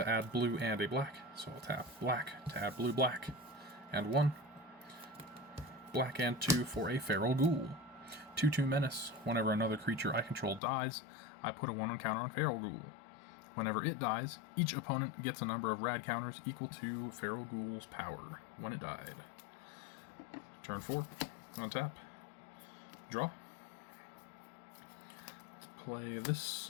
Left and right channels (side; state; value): right; drops out; at 10.6 s